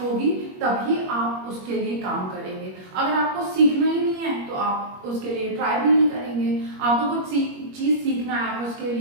होगी तभी आप उसके लिए काम करेंगे। अगर आपको सीखना ही नहीं है तो आप उसके लिए ट्राई भी नहीं करेंगे। आपको कुछ चीज सीखना है, आप उसके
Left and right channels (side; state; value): left; late; 21 ms